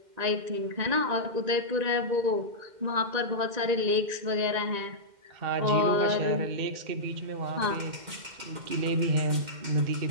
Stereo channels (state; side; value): late; left; 2.1 ms